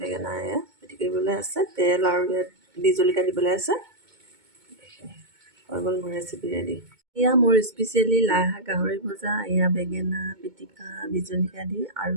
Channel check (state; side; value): late; left; 2.2 ms